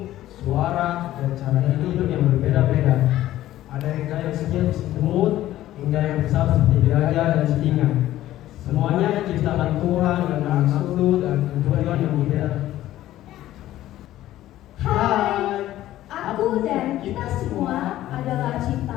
suara, dan cara hidup yang berbeda-beda. Ada yang kaya kecil semut, hingga yang besar seperti gajah dan singa. Semuanya diciptakan Tuhan dengan maksud dan tujuan yang berbeda. Hai, aku dan kita semua adalah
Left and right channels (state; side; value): quieter; right; 14.1 dB